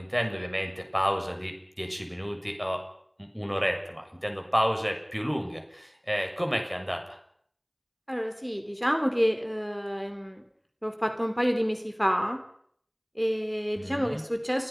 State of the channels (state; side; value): identical; both; correlation 1.00